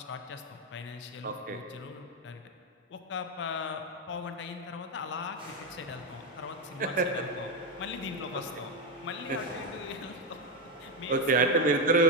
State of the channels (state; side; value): normal; both; correlation 0.08